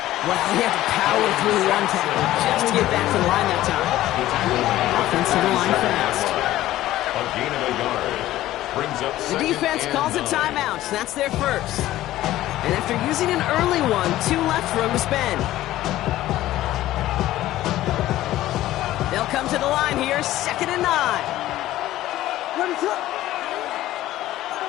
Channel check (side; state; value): right; quieter; 14.9 dB